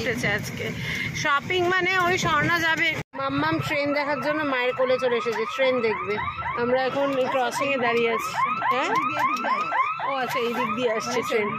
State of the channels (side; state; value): both; identical; correlation 1.00